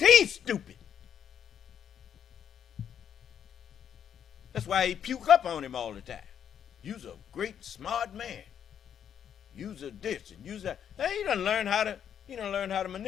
stupid. That's why he puke up on him all the time. You's a great smart man. You's a this and you's that. Hey, he done learn how to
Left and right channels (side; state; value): right; quieter; 8.8 dB